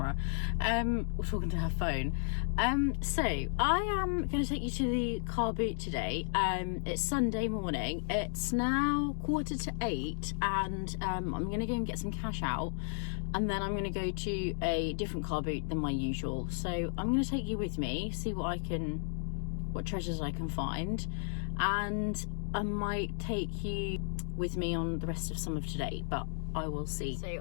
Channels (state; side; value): silent; right; digital silence